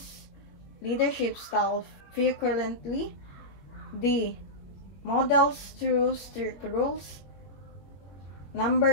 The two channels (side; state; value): right; late; 21 ms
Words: leadership style frequently. D. Models through strict rules.